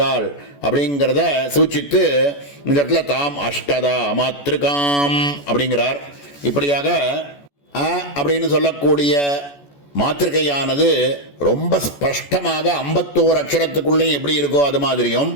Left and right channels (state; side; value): late; right; 14 ms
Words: அப்படிங்கிறத சூச்சித்து இந்த இடத்துல தாம் அஷ்டதா மாத்திருக்காம் அப்படிங்கிறார். இப்படியாக அப்படின்னு சொல்லக்கூடிய மாத்திருக்கையானது ரொம்ப ஸ்பஷ்டமாக 51 அக்ஷரத்துக்குள்ளே எப்படி இருக்கோ அது மாதிரியும்